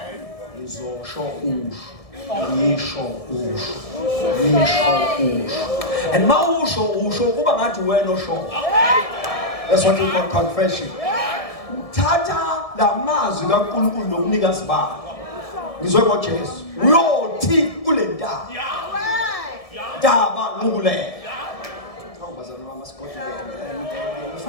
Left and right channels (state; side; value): late; right; 1.7 ms